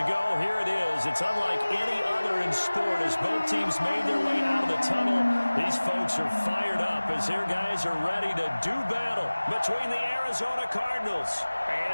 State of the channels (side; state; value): both; inverted; correlation -1.00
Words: here it is. It's unlike any other in sport as both teams made their way out of the tunnel. These folks are fired up as their guys are ready to do battle between the Arizona Cardinals